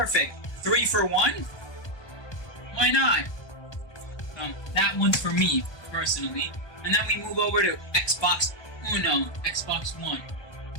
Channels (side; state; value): right; late; 1.2 ms